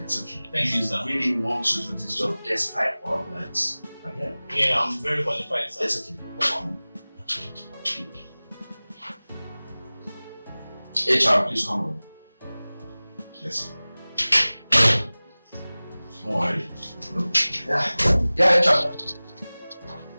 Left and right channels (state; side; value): inverted; both; correlation -0.99